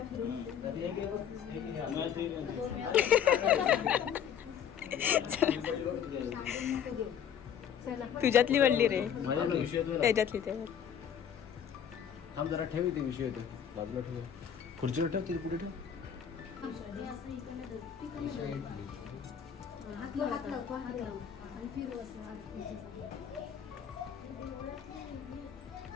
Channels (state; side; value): quieter; right; 8.5 dB